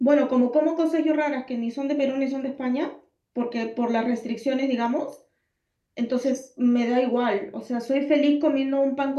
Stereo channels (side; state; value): both; identical; correlation 1.00